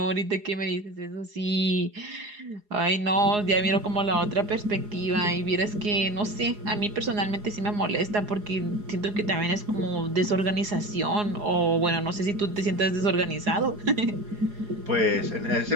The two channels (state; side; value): late; left; 4.8 ms